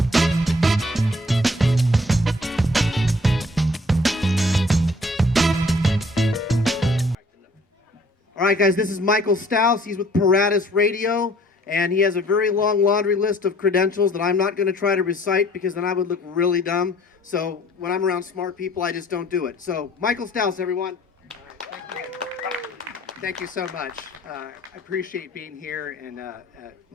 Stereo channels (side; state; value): both; normal; correlation 0.56